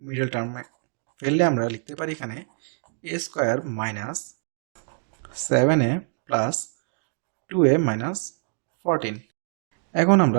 মিডল টার্ম ফেললে আমরা লিখতে পারি এখানে a square minus 7a plus 2a minus 14। এখন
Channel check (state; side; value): silent; left; 61 dB below the other